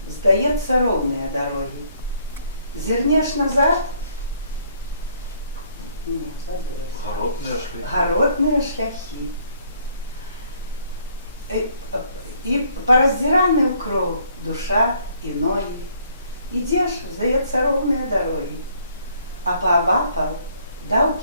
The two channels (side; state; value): both; inverted; correlation -0.65